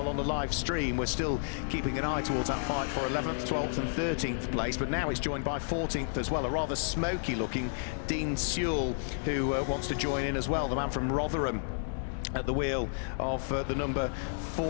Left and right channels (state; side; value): silent; right; digital silence